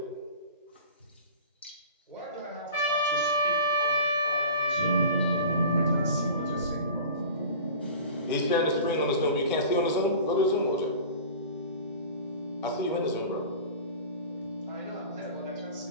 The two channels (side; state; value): both; inverted; correlation -0.38